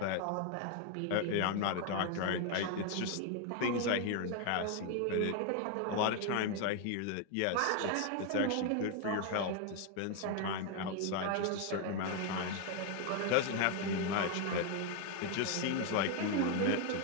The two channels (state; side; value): different; both; correlation 0.01